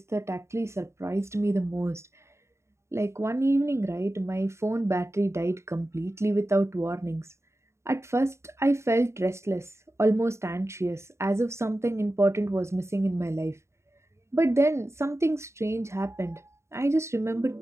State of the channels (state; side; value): late; left; 0.13 ms